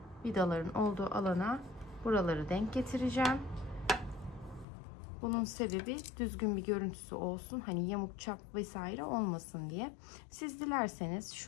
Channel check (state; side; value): drops out; right; at 4.7 s